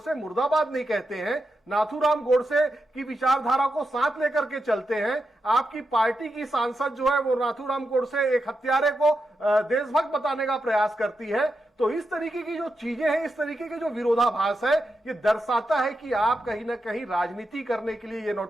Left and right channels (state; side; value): normal; both; correlation 0.87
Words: मुर्दाबाद नहीं कहते हैं, नाथूराम गोडसे की विचारधारा को साथ लेकर के चलते हैं। आपकी पार्टी की सांसद जो है वो नाथूराम गोडसे एक हत्यारे को देशभक्त बताने का प्रयास करती है। तो इस तरीके की जो चीजें हैं, इस तरीके के जो विरोधाभास है, ये दर्शाता है कि आप कहीं ना कहीं राजनीति करने के लिए ये